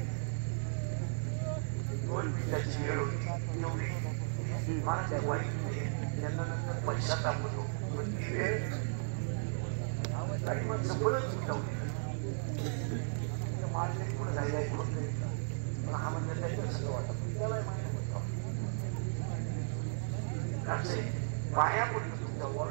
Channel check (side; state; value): left; silent; digital silence